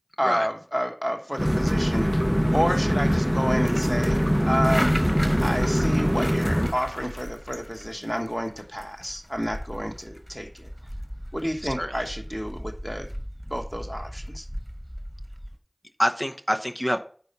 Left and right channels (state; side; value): identical; both; correlation 1.00